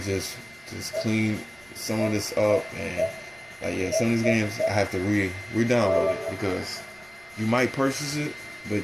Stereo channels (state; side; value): noise; right; rumble, 29 dB below the sound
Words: just clean some of this up, and like, some of these games I have to re-download it, because you might purchase it, but